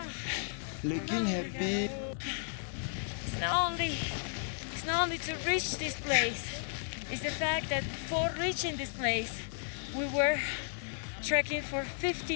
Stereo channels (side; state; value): right; silent; 55 dB below the other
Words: looking happy. It's not only to reach this place, it's the fact that before reaching this place, we were trekking for